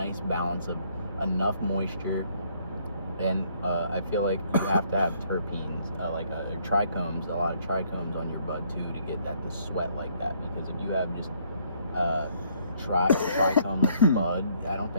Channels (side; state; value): both; inverted; correlation -0.67